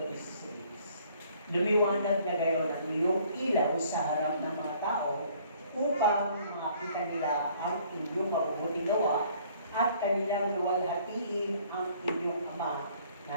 Lumiwanag na gayon ang iyong ilaw sa harap ng mga tao upang makita nila ang inyong mabubuting gawa at kanilang luwalhatiin ang inyong Ama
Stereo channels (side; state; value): both; inverted; correlation -0.59